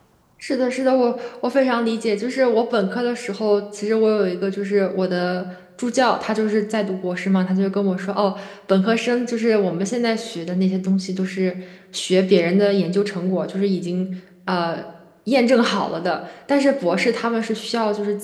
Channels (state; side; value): identical; both; correlation 1.00